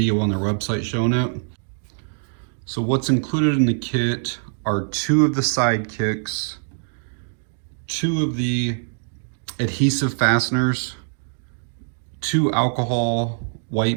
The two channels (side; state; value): left; silent; digital silence